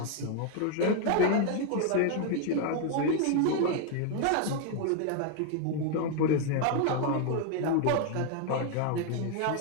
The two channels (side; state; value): both; different; correlation 0.01